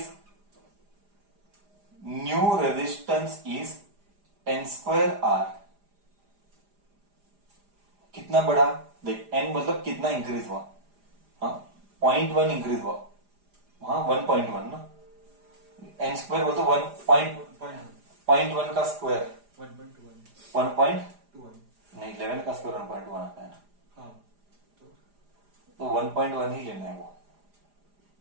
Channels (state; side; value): late; left; 4.9 ms